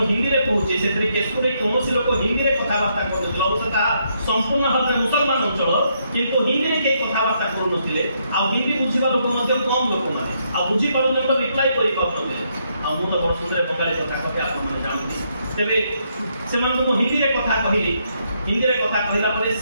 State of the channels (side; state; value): both; inverted; correlation -0.75